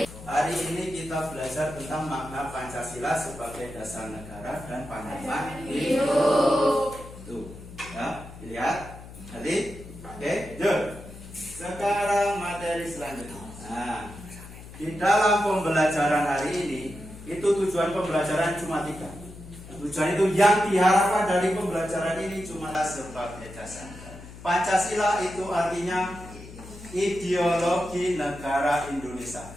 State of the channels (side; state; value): left; noise; hum, 15 dB below the sound